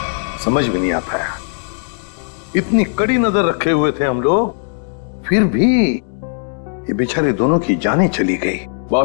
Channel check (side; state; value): right; silent; digital silence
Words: समझ में नहीं आता है, इतनी कड़ी नजर रखे हुए थे हम लोग, फिर भी ये बेचारे दोनों की जानें चली गई।